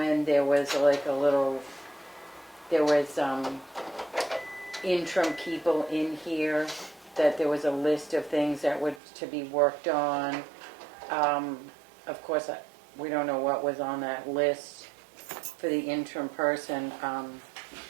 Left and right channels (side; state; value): left; drops out; at 9.0 s